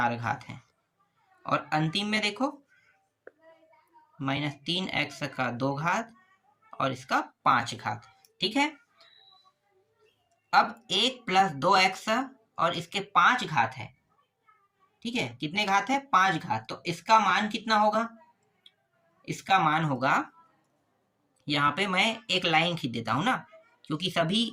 घात है, और अंतिम में देखो -3x का 2 घात और इसका 5 घात। ठीक है, अब 1 प्लस 2x और इसके 5 घात है। ठीक है, कितने घात है 5 घात, तो इसका मान कितना होगा, इसका मान होगा, यहाँ पे मैं एक लाइन खींच देता हूँ ना, क्योंकि सभी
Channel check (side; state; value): both; identical; correlation 1.00